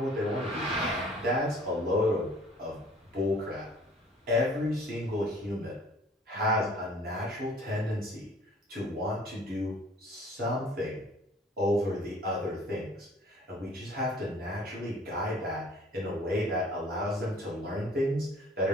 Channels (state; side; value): normal; both; correlation 0.52